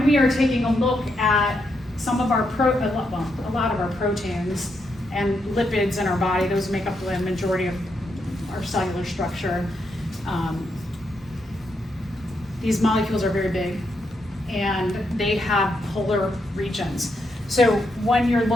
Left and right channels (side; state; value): both; normal; correlation 0.80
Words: we are taking a look at some of our a lot of our proteins and lipids in our body, those make up the majority of our cellular structure. These molecules are very big, and they have polar regions. So when you're